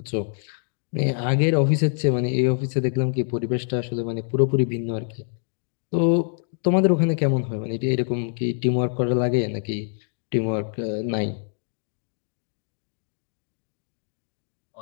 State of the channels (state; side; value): silent; right; digital silence